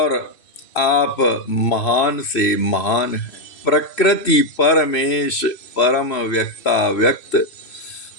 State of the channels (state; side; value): late; right; 2.6 ms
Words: आप महान से महान हैं। प्रकृति परमेश परम व्यक्ता व्यक्त,